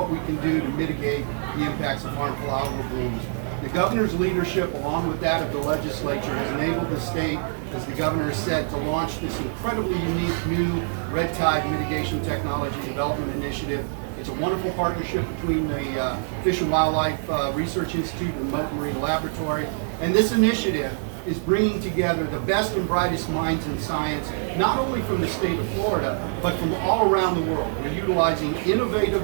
we can do to mitigate the impacts of harmful algal blooms. The Governor's leadership, along with that of the legislature, has enabled the state, as the Governor has said, to launch this incredibly unique new red tide mitigation technology development initiative. It's a wonderful partnership between the Fish and Wildlife Research Institute and the Mote Marine Laboratory. And this initiative is bringing together the best and brightest minds in science, not only from the state of Florida, but from all around the world. We're utilizing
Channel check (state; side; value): silent; left; digital silence